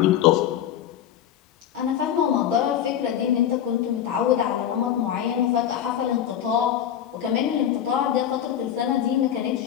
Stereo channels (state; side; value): quieter; right; 10.1 dB